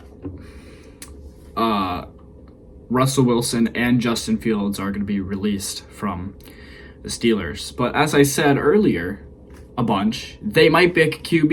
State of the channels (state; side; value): identical; both; correlation 1.00